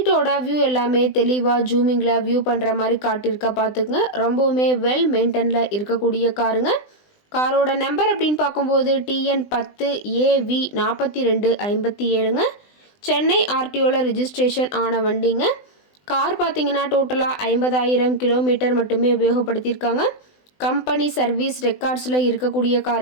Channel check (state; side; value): late; right; 20 ms